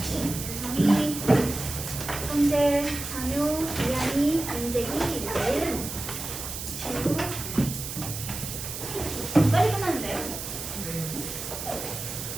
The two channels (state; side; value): noise; right; hiss, 7 dB below the sound